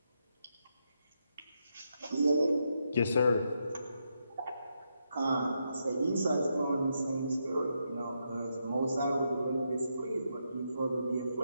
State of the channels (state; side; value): inverted; both; correlation -0.82